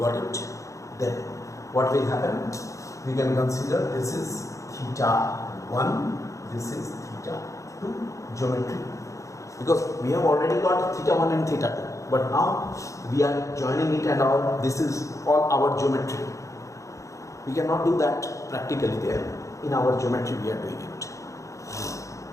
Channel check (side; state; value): right; late; 0.15 ms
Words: it. Then what will happen? We can consider this is theta 1, this is theta 2 geometry, because we have already got theta 1 and theta 2, but now we are joining it and all. This is all our geometry. We cannot do that practically there. In our geometry we are doing it.